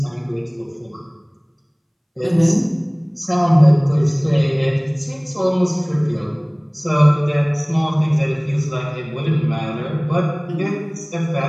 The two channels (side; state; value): both; identical; correlation 1.00